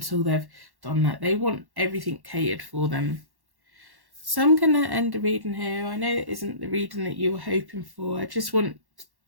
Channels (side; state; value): left; late; 1.1 ms